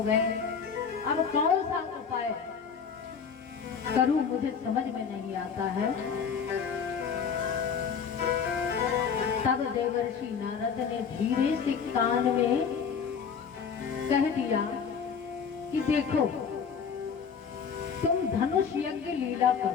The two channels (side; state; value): right; quieter; 6.5 dB